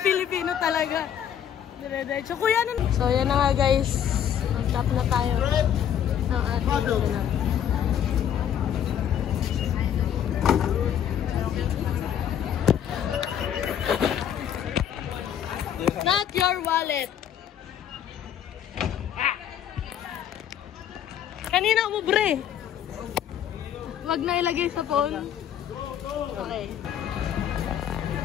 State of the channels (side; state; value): right; quieter; 9.6 dB